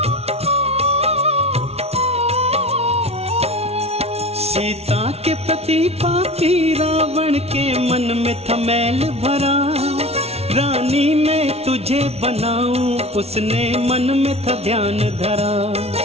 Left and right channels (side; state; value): left; late; 0.30 ms